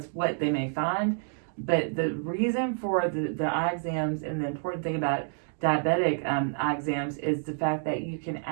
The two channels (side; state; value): left; silent; 58 dB below the other